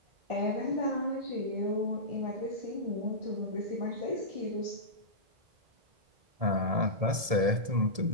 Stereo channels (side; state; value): left; late; 1.7 ms